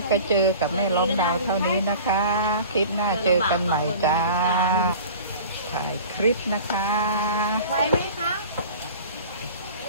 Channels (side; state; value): both; inverted; correlation -0.41